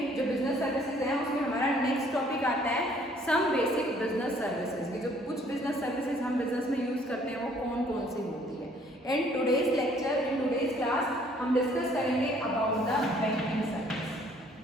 जो business services हैं उसमें हमारा नेक्स्ट टॉपिक आता है सम बेसिक बिजनेस सर्विसेज की. जो कुछ बिजनेस सर्विसेज हम बिजनेस में यूज करते हैं वो कौन कौन सी होती है. In today's lecture, in today's class हम डिस्कस करेंगे अबाउट द बैंकिंग सर्विस.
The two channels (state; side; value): normal; both; correlation 0.60